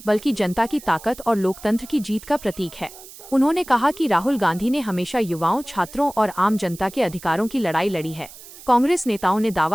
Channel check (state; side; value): noise; right; hiss, 18 dB below the sound